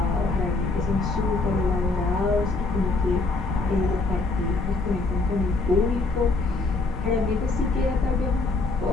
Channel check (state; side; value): quieter; right; 3.5 dB